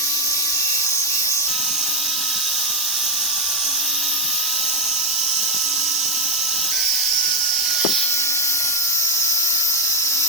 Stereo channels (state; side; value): normal; both; correlation 0.03